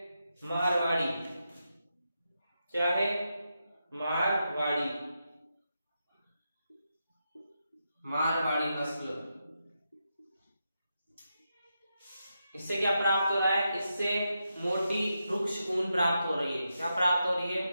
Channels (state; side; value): inverted; both; correlation -0.86